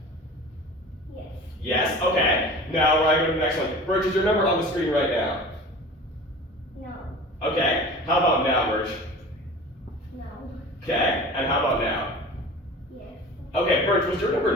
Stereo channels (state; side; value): normal; both; correlation 0.39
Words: Yes. Yes? Okay. Now I go to the next one. Bert, is your number on the screen right now? No. Okay. How about now, Bert? No. Okay. And how about now? Yes. Okay, Bert, was your number